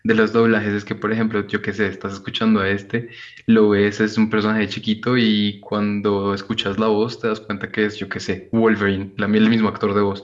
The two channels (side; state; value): both; identical; correlation 1.00